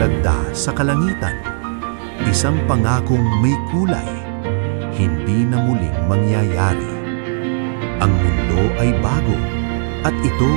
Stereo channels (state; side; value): silent; left; digital silence